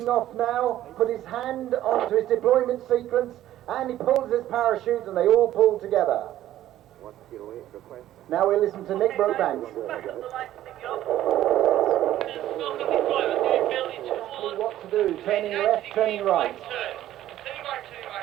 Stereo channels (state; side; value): quieter; left; 13.2 dB